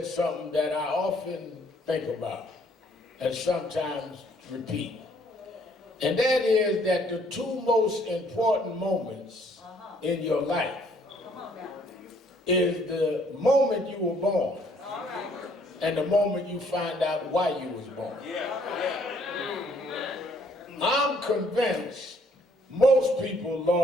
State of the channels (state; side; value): normal; both; correlation 0.64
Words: something that I often think about and sometimes repeat. And that is that the 2 most important moments in your life is the moment you were born and the moment you find out why you was born. I'm convinced most people,